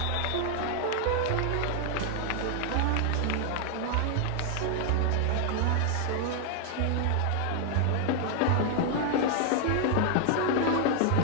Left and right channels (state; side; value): different; both; correlation 0.00